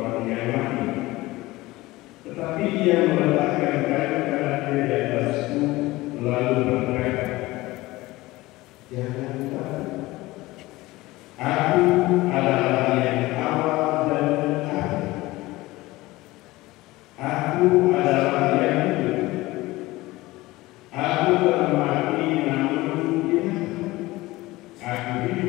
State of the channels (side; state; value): right; quieter; 19.4 dB